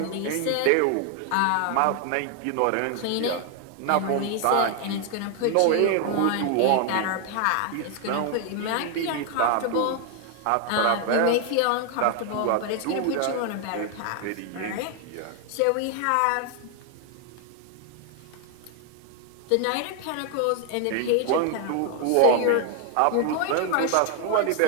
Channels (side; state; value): both; different; correlation 0.01